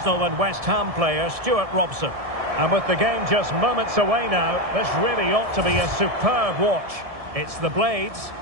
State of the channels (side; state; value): left; late; 1.7 ms